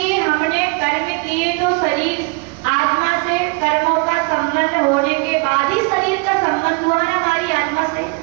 हमने कर्म किए तो शरीर आत्मा से कर्मों का संबंध होने के बाद ही शरीर का संबंध हुआ ना हमारी आत्मा से।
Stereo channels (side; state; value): left; quieter; 30.2 dB